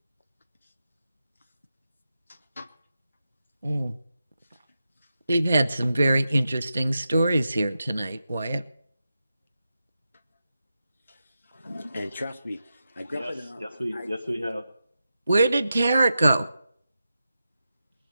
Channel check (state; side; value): inverted; both; correlation -0.90